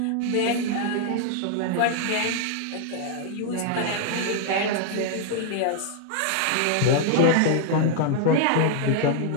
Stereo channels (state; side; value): different; both; correlation 0.00